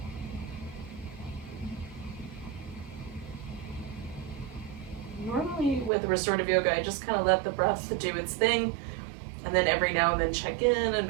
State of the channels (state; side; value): drops out; left; at 5.9 s